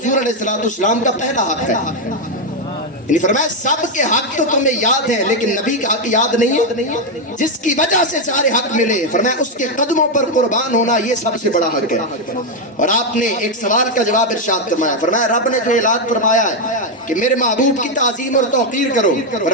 علیہ السلام کا پہلا حق ہے۔ یعنی فرمایا سب کے حق تو تمہیں یاد ہے لیکن نبی کا حق یاد نہیں ہے، جس کی وجہ سے سارے حق ملے، فرمایا اس کے قدموں پر قربان ہونا یہ سب سے بڑا حق ہے۔ اور آپ نے ایک سوال کا جواب ارشاد فرمایا، فرمایا رب نے جو اعلان فرمایا ہے کہ میرے محبوب کی تعظیم اور توقیر کرو،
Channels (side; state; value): both; normal; correlation 0.04